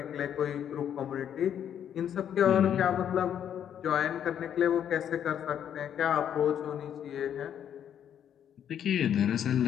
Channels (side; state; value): right; quieter; 9.4 dB